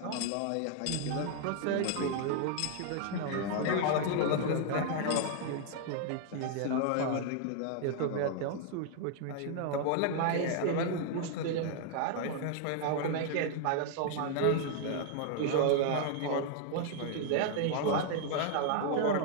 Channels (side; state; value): both; different; correlation 0.00